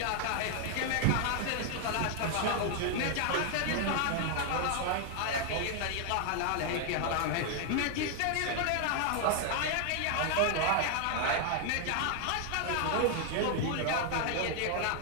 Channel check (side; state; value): both; different; correlation 0.00